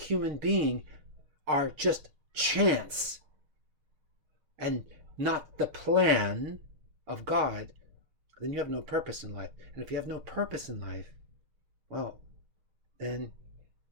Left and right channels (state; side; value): late; left; 6.4 ms